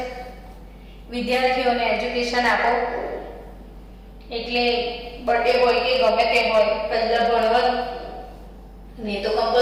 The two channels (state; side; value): identical; both; correlation 1.00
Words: વિદ્યાર્થીઓને એજ્યુકેશન આપો। એટલે બર્થડે હોય કે ગમે તે હોય, પહેલા ભણવાનું ને તો